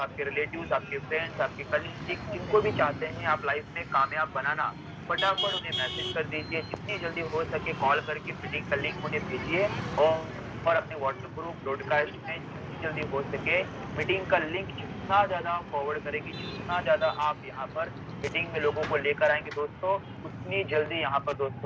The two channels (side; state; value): both; identical; correlation 1.00